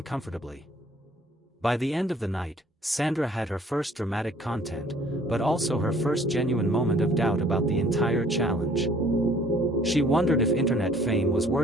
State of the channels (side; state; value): both; normal; correlation 0.57